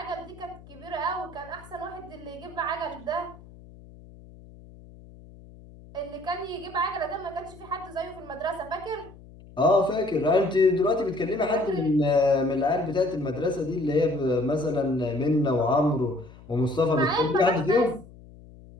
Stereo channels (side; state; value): left; noise; hum, 20 dB below the sound